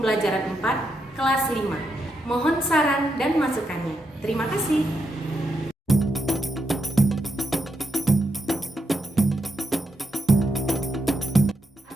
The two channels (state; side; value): normal; both; correlation 0.83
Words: 4, kelas 5. Mohon saran dan masukannya. Terima kasih.